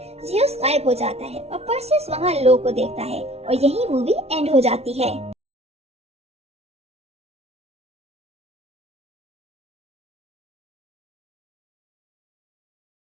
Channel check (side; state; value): left; late; 0.31 ms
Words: ज़ियस गायब हो जाता है और पर्सियस वहाँ लो को देखता है और यही मूवी एंड हो जाती है।